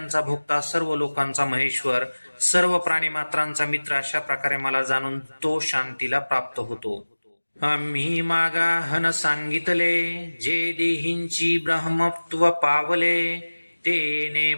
भोक्ता, सर्व लोकांचा महेश्वर, सर्व प्राणीमात्रांचा मित्र, अशा प्रकारे मला जाणून तो शांतीला प्राप्त होतो. आम्ही मागाहन सांगितले, जे देहींची ब्रह्मत्व पावले, तेने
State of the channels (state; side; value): inverted; both; correlation -1.00